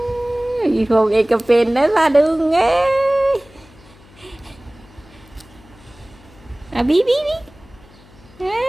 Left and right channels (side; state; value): left; noise; hum, 25 dB below the sound